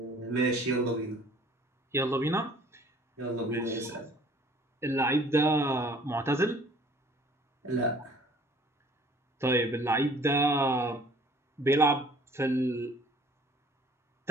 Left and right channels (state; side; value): normal; both; correlation 0.53